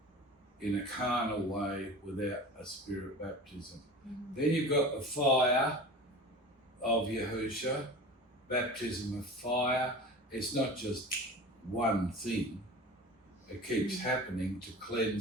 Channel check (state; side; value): normal; both; correlation 0.36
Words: in a carnal way without a Spirit baptism. Then you've got the fire of Yahusha, baptism of fire. It's not just one thing. It keeps happening to